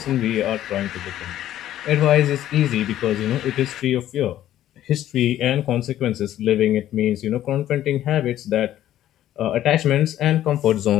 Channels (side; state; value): right; quieter; 12.6 dB